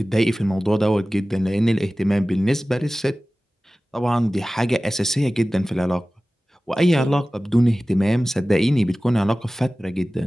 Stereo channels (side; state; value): both; normal; correlation 0.97